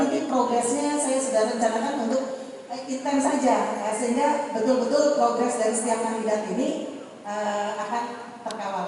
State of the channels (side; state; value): both; identical; correlation 1.00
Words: ini progresnya saya sudah rencanakan untuk intens saja sehingga betul-betul progres dari setiap kandidat ini akan